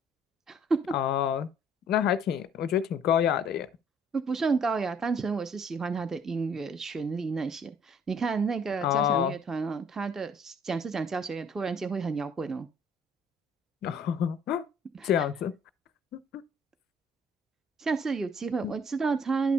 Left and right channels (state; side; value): normal; both; correlation 0.58